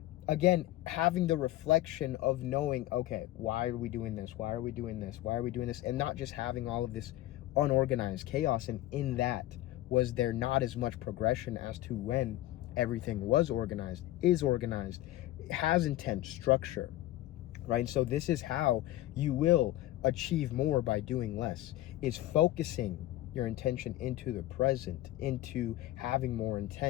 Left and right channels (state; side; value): quieter; right; 15.7 dB